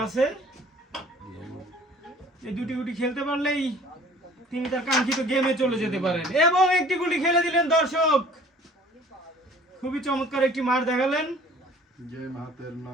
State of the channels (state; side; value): normal; both; correlation 0.51